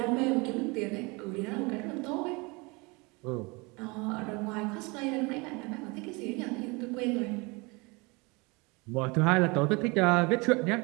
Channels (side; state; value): left; quieter; 27.1 dB